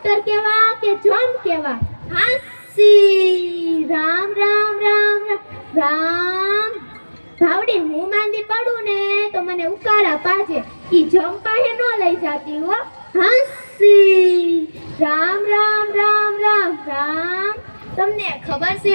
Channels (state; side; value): inverted; both; correlation -1.00